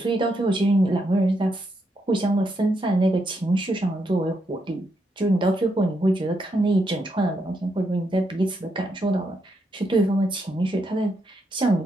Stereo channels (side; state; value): both; normal; correlation 0.80